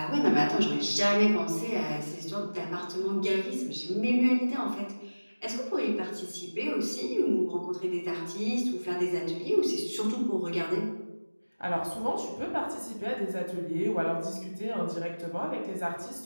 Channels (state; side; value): inverted; both; correlation -1.00